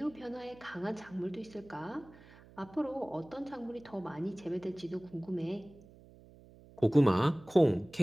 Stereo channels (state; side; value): noise; right; hum, 22 dB below the sound